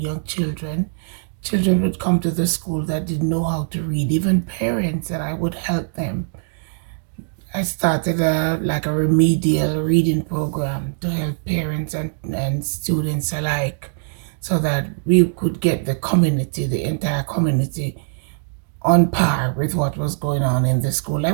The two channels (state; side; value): silent; left; 65 dB below the other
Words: children, children would come to the school that didn't know how to read, even parents, that I would help them. I started like a remedial reading program to help parents and students alike so that we could get the community, the entire community, on par with what was going on in the school. I